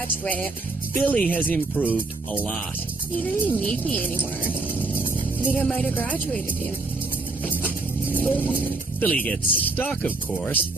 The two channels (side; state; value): left; quieter; 3.3 dB